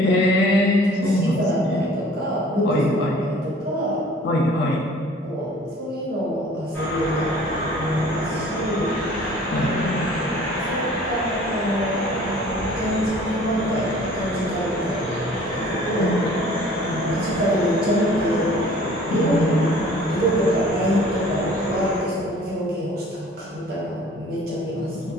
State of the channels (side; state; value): both; normal; correlation 0.50